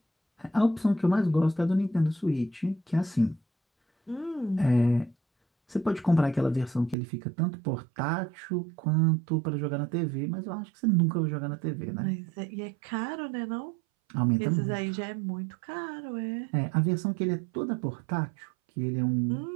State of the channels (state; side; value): drops out; left; at 7.0 s